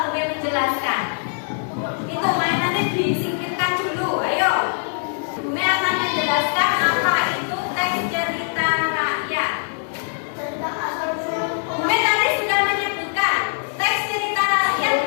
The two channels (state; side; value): silent; right; digital silence